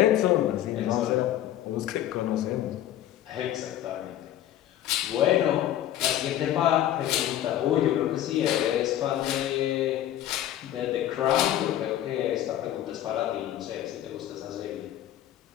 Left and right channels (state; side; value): quieter; right; 12.2 dB